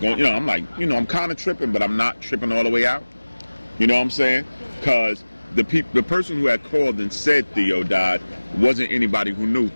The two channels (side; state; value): both; inverted; correlation -1.00